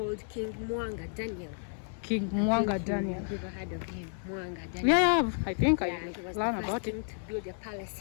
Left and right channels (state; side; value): silent; right; digital silence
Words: King Mwanga Daniel. King Mwanga Daniel. You've ever heard of him? Mwanga Daniel. Yeah, I think I he was learned the first about king it. to build a palace